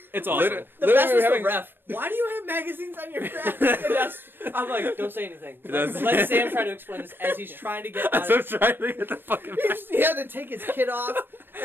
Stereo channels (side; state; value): left; late; 0.097 ms